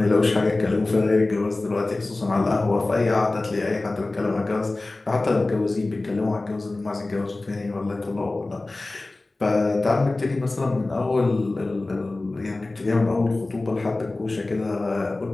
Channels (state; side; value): quieter; right; 3.1 dB